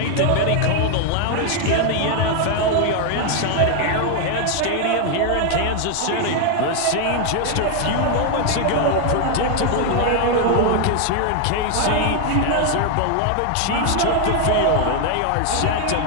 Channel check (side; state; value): both; different; correlation 0.01